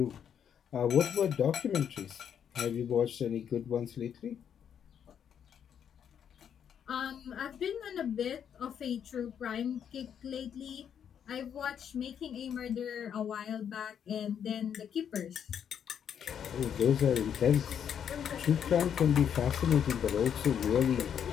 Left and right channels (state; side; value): quieter; right; 8.4 dB